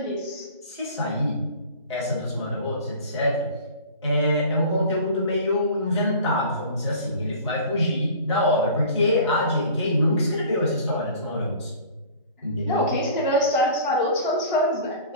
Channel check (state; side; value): inverted; both; correlation -0.42